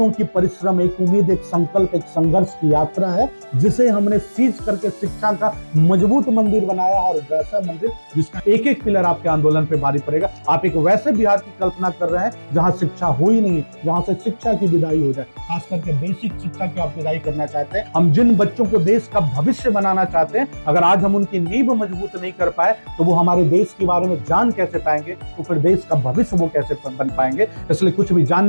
की परिश्रम, एक उम्मीद, एक संकल्प, एक संघर्ष की यात्रा है जिसे हमने सीज करके शिक्षा का मजबूत मंदिर बनाया, और वैसा मंदिर जिसका एक एक पिलर आपके आंदोलन पे भारी पड़ेगा। आप एक वैसे बिहार की कल्पना कर रहे हैं जहां शिक्षा हो ही नहीं, जहां से शिक्षा की विदाई हो जाए, खास करके बेसिक शिक्षा की आप विदाई करना चाहते हैं। हम जिन बच्चों को देश का भविष्य बनाना चाहते हैं, अगर आज हम उनकी नींव मजबूत नहीं कर पाए तो वो हमारे देश के बारे में जान कैसे पाएंगे, तो फिर देश का भविष्य वो कैसे बन पाएंगे। इसलिए कुछ भी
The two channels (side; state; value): both; inverted; correlation -1.00